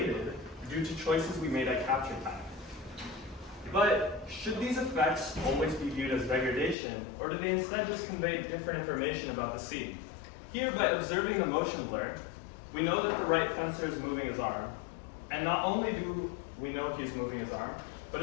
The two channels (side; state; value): right; drops out; at 6.8 s